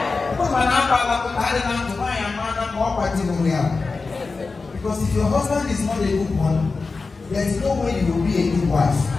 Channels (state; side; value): quieter; right; 4.1 dB